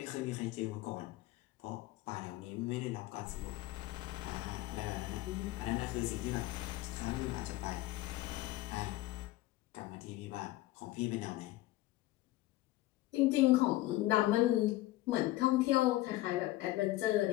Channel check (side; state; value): right; quieter; 17.2 dB